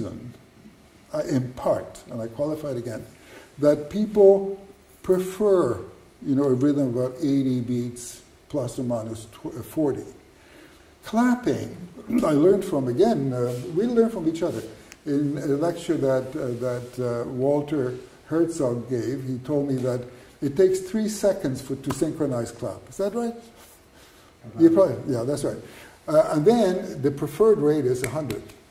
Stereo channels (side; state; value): both; identical; correlation 1.00